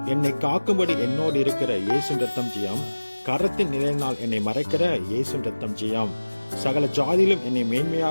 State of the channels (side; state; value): both; inverted; correlation -1.00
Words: என்னை காக்கும்படி என்னோடு இருக்கிற இயேசு ரத்தம் ஜெயம். கரத்தின் நிலையினால் என்னை மறைக்கிற இயேசு ரத்தம் ஜெயம். சகல ஜாதியிலும் என்னை